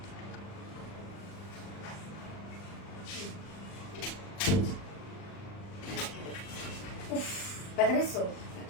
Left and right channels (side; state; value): right; late; 40 ms